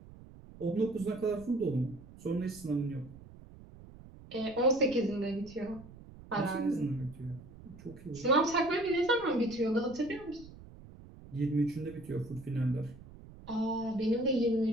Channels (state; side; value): noise; right; rumble, 18 dB below the sound